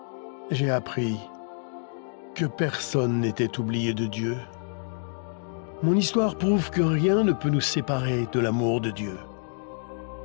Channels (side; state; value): right; silent; digital silence